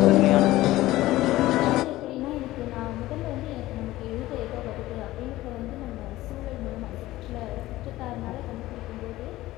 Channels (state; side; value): quieter; right; 16.8 dB